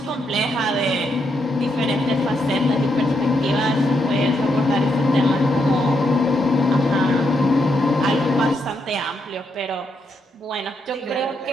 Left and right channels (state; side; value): normal; both; correlation 0.79